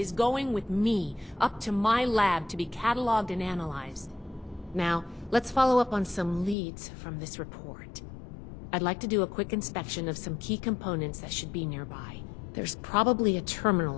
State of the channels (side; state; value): right; drops out; at 6.6 s